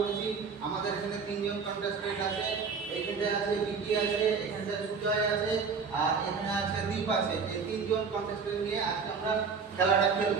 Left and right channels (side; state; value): left; quieter; 5.4 dB